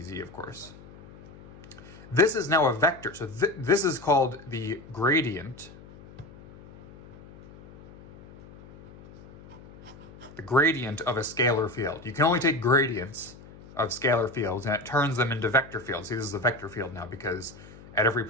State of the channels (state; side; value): noise; left; hum, 20 dB below the sound